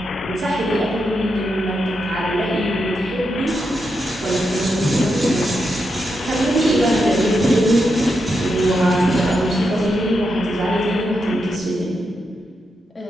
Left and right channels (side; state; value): both; normal; correlation 0.85